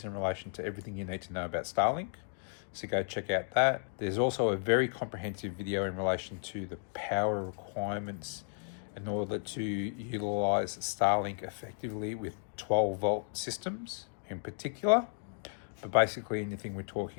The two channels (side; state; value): right; silent; 55 dB below the other